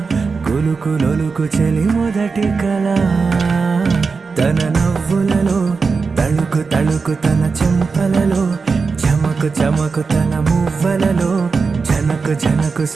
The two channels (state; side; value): quieter; left; 4.7 dB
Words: కులుకులొలుకు చెలి మొదటి కళ. తన నవ్వులలో తళుకు తళుకు తన చెంపలలో చమకు చమకు తన మువ్వలలో జనకు జనకు